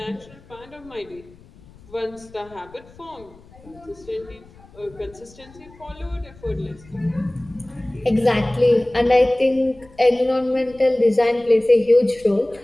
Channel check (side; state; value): left; noise; rumble, 24 dB below the sound